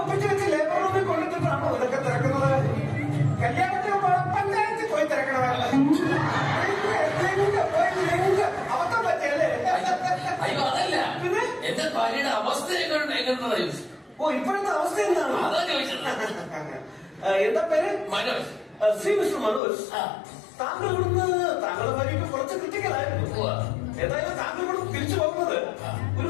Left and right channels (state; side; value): drops out; right; at 19.6 s